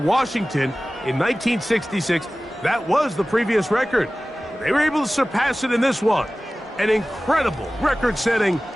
in 1966. That was the previous record. They were able to surpass it in this one. An incredible record-setting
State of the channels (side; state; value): both; normal; correlation 0.97